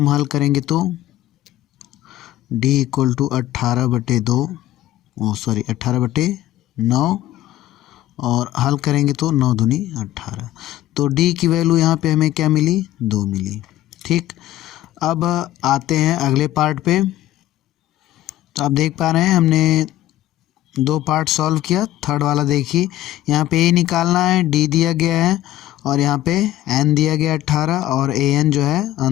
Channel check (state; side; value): quieter; right; 14.3 dB